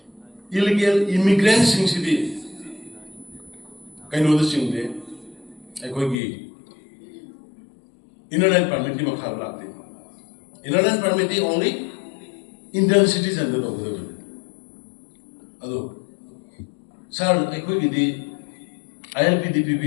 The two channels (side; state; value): right; drops out; at 6.2 s